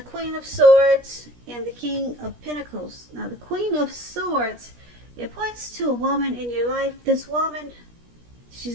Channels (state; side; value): late; left; 17 ms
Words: of Swords and the King of Pentacles. Now, the Queen of Swords, it points to a woman in your life. This woman,